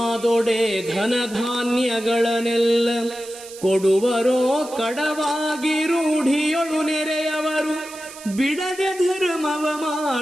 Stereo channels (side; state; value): right; noise; hiss, 16 dB below the sound